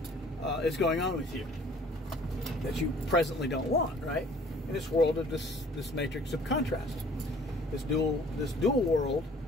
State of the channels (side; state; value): both; normal; correlation 0.53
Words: is going on with you that you presently don't want, right? In this world of this matrix of contrast, this dual world,